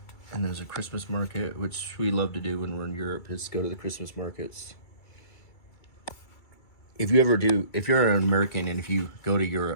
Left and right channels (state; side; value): late; right; 2.3 ms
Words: And there's a Christmas market, which we love to do when we're in Europe, is go to the Christmas markets. If you're an American and if you go to